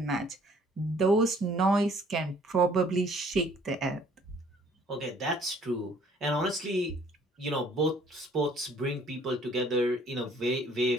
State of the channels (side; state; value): both; normal; correlation 0.58